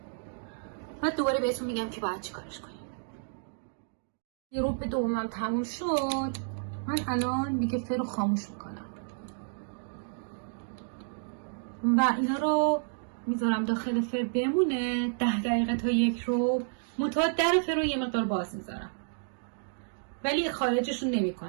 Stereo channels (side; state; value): left; silent; digital silence